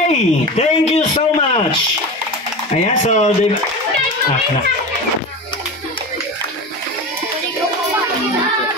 thank you so much. Ayan, so na.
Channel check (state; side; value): normal; both; correlation 0.28